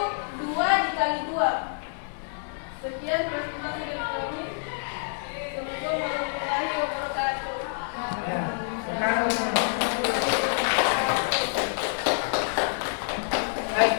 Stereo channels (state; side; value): silent; right; 56 dB below the other